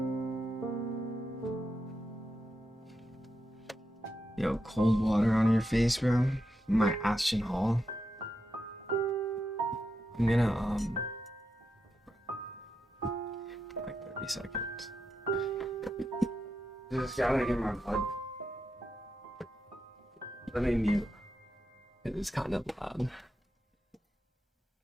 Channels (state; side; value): normal; both; correlation 0.86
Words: Yo, cold water on your face, bro. My Ashton Hall. I'm gonna, like 30 seconds. Just gotta get my blood. Let me mute. It is kind of loud.